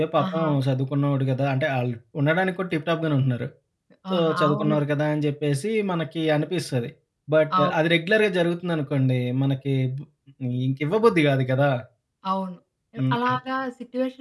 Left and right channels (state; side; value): identical; both; correlation 1.00